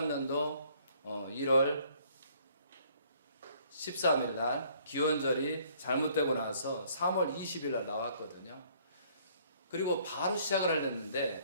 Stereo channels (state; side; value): inverted; both; correlation -0.61